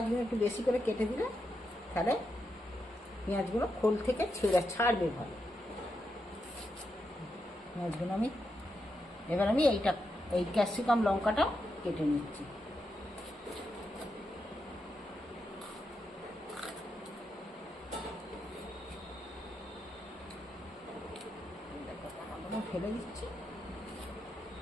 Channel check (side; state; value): both; normal; correlation 0.84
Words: একটু বেশি করে কেটে দিলে তাহলে পেঁয়াজগুলো খোল থেকে ছাড়বে ভালো। পেঁয়াজগুলো এবার আমি এই ক্যাপসিকাম লঙ্কাটা কেটে নিচ্ছি। ফেলে দিচ্ছি,